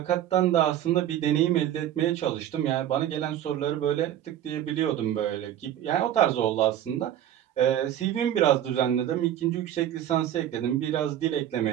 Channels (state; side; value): quieter; left; 11.4 dB